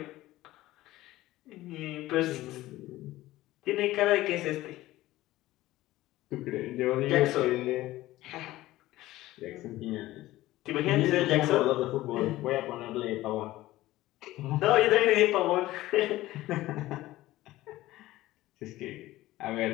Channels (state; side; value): quieter; right; 16.6 dB